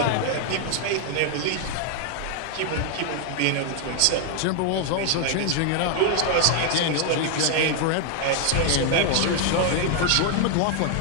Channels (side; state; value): both; different; correlation 0.00